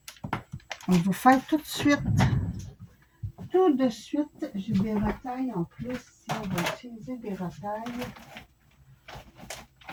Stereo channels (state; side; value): identical; both; correlation 1.00